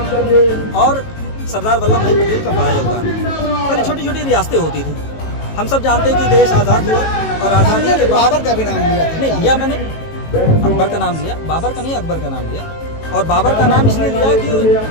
और सरदार वल्लभ भाई पटेल का बड़ा योगदान है। पहले छोटी छोटी रियासतें होती थी, हम सब जानते हैं कि देश आज़ाद हुआ और आज़ादी के बाद बाबर का भी नाम लिया नहीं लिया मैंने, अकबर का नाम लिया, बाबर का नहीं अकबर का नाम लिया। और बाबर का नाम इसलिए लिया कि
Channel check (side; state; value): right; late; 18 ms